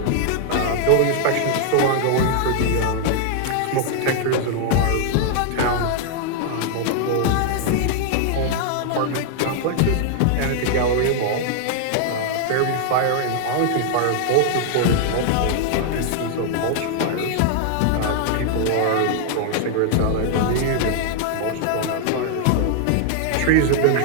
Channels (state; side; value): different; both; correlation 0.00